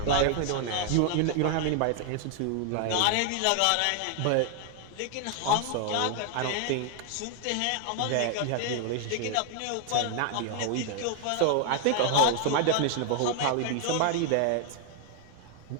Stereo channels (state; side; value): different; both; correlation 0.00